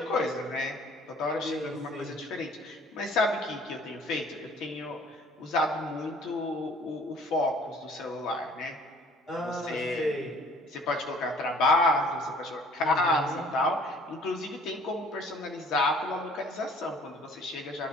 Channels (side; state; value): both; normal; correlation 0.55